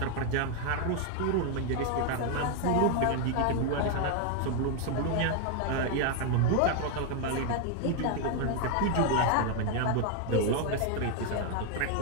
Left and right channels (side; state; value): both; different; correlation 0.00